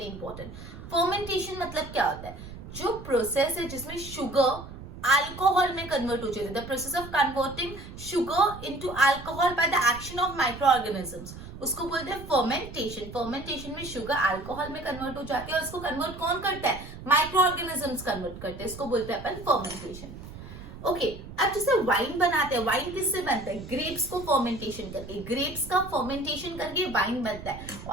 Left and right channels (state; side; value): noise; right; rumble, 13 dB below the sound